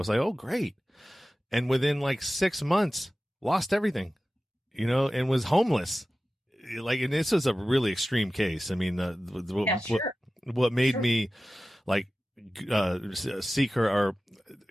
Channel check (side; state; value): both; normal; correlation 0.95